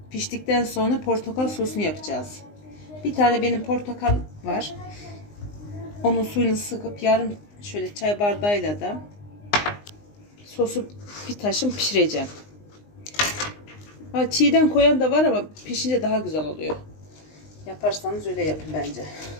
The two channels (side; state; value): right; late; 19 ms